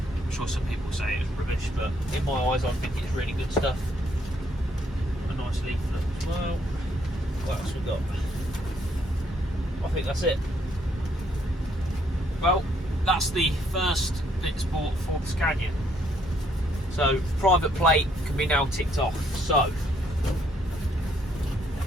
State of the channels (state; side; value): normal; both; correlation 0.69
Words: sure some people say it was rubbish, but in my eyes I think it's really good stuff. A nice leaflet as well. What else we got? I think that's it. Well, that's the first bits bought for the Scania. So private plate can be now ticked off. So